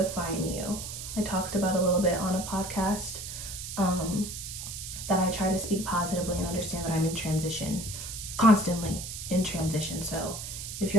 you. I talked about a little bit on a podcast that I try to speak positively and understand that I'm in transition, constantly in transition. So if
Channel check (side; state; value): right; noise; hiss, 8 dB below the sound